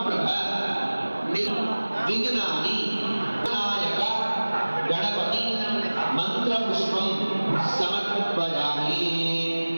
विघ्नानि विनायक गणपति మంత్రపుష్పం సమర్పయామి.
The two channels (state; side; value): inverted; both; correlation -1.00